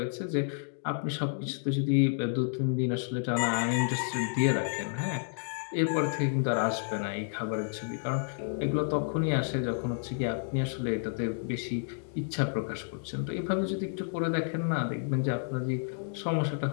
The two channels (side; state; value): right; silent; digital silence